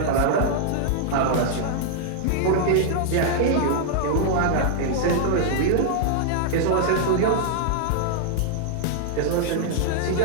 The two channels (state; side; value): different; both; correlation -0.01